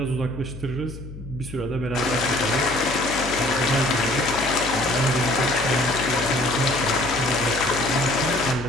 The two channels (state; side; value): noise; left; hum, 13 dB below the sound